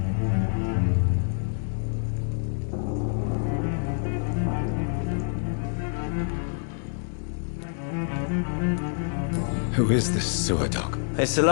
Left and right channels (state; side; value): silent; right; 56 dB below the other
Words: Who is this sewer dog? It's the